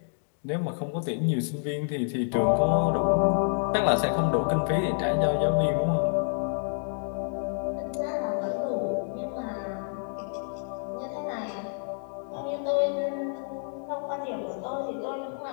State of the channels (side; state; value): right; silent; digital silence